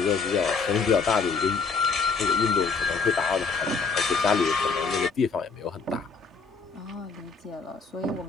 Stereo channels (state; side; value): quieter; right; 4.8 dB